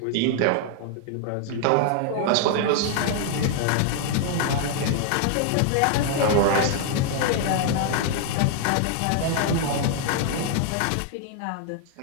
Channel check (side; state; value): both; different; correlation 0.00